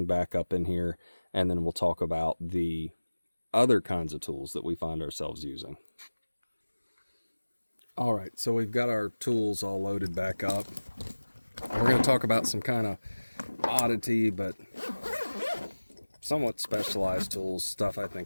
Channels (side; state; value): both; inverted; correlation -1.00